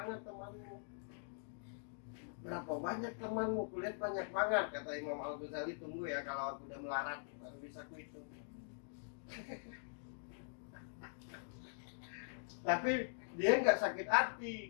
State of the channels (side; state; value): right; silent; digital silence